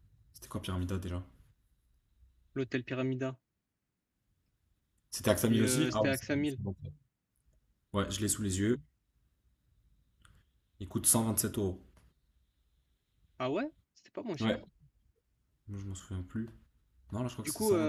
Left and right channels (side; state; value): both; identical; correlation 1.00